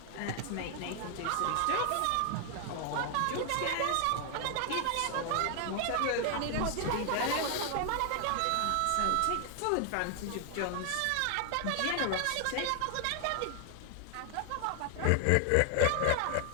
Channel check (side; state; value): both; different; correlation 0.00